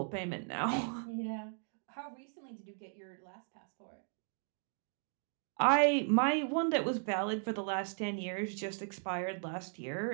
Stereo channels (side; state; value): left; silent; 53 dB below the other